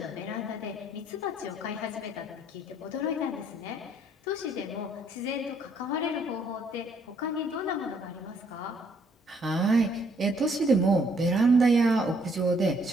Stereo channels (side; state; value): both; normal; correlation 0.67